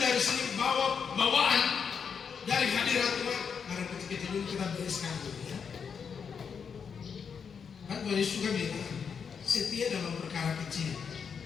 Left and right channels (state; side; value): quieter; right; 6.5 dB